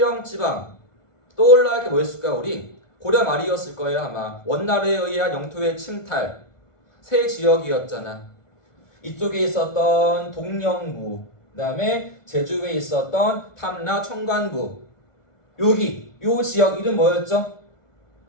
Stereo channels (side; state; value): right; late; 1.4 ms